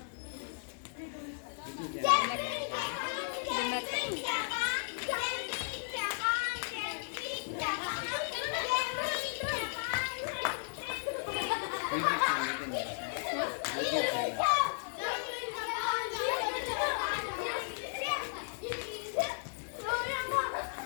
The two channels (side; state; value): right; silent; digital silence